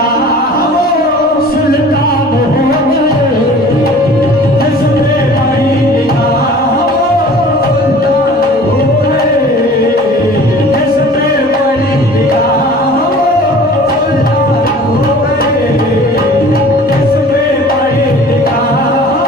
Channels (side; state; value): both; normal; correlation 0.45